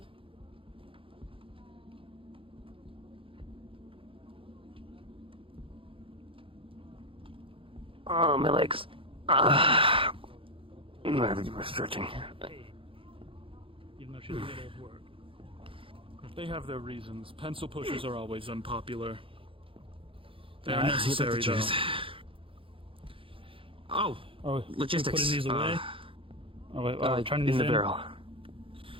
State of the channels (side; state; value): left; late; 0.26 ms